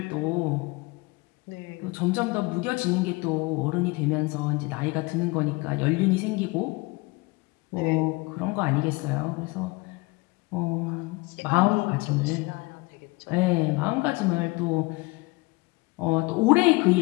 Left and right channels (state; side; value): quieter; right; 24.8 dB